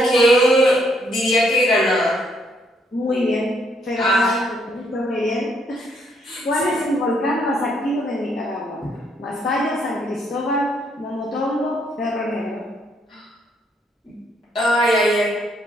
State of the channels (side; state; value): both; normal; correlation 0.71